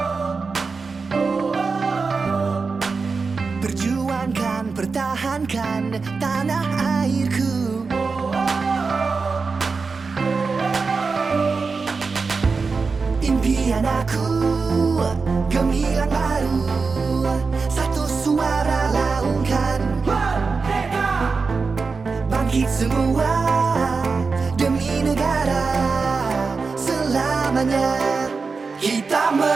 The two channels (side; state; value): left; quieter; 4.6 dB